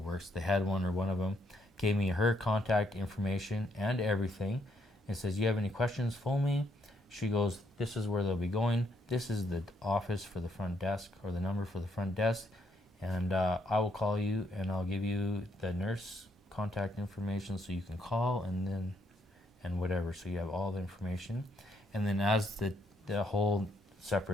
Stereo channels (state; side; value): normal; both; correlation 0.73